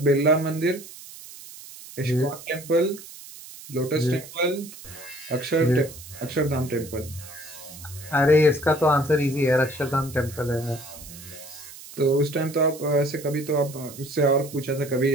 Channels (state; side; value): noise; right; hiss, 16 dB below the sound